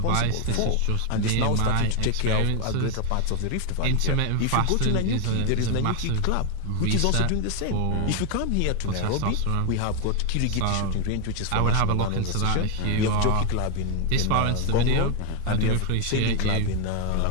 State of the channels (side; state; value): both; different; correlation 0.01